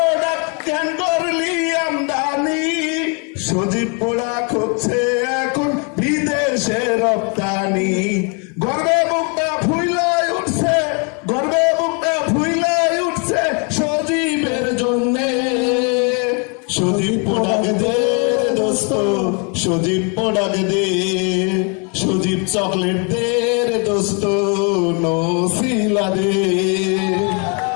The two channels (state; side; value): quieter; right; 34.7 dB